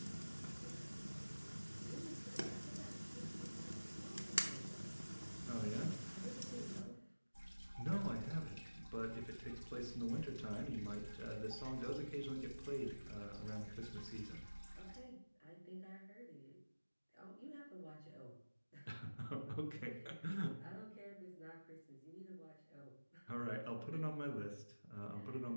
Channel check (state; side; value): inverted; both; correlation -1.00